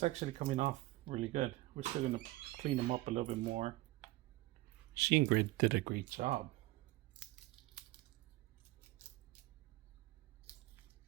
actually coming off really good. We're still going to clean them up a little bit more. She and Grid did a great job.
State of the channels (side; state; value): left; quieter; 19.1 dB